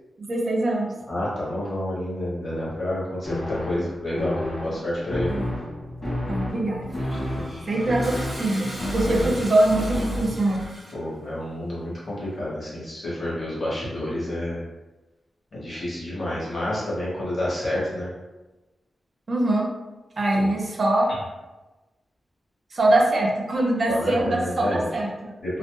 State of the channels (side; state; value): both; normal; correlation 0.89